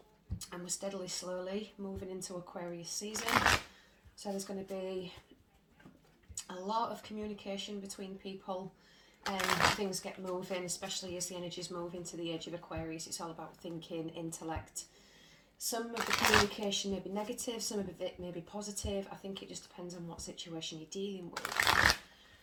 And we're steadily, slowly moving into Aquarius season. So there's going to be a lot of communication between people and things get moving, especially as the energies move into the age of Aquarius. It's all about thinking, intellect. Some of the communication may be negative, some of it may be positive. I think it just depends on what situation you're dealing with.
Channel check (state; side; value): identical; both; correlation 1.00